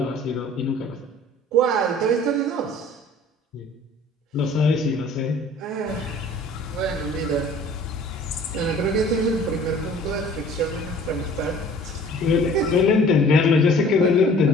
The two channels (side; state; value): both; normal; correlation 0.49